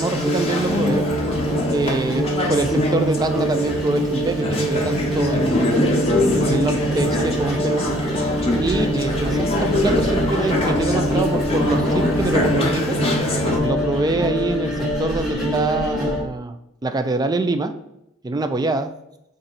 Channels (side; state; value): both; normal; correlation 0.60